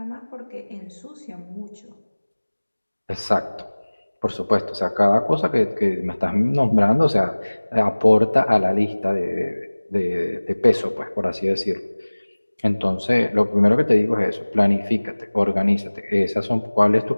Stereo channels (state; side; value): inverted; both; correlation -1.00